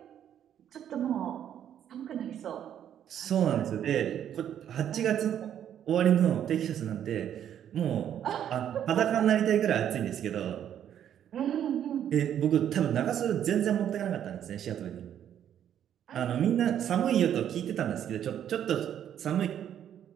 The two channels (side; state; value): left; quieter; 9.9 dB